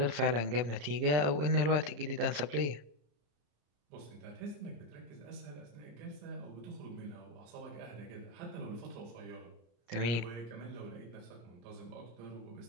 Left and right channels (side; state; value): left; late; 34 ms